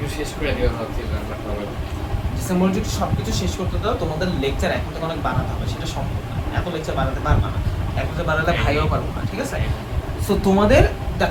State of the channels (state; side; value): identical; both; correlation 1.00